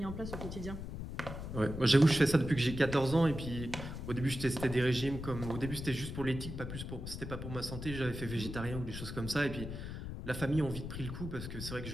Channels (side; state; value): left; noise; rumble, 7 dB below the sound